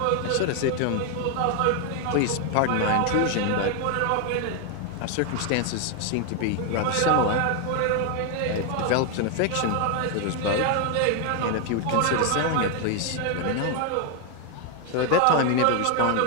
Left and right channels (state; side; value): different; both; correlation 0.01